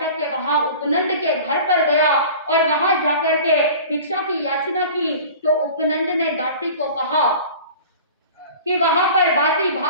के वहां उपनंद के घर पर गया और वहां जाकर के भिक्षा की याचना की। तो उपनंद ने दासी को कहा कि वहां पर बासी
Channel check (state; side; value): inverted; both; correlation -0.40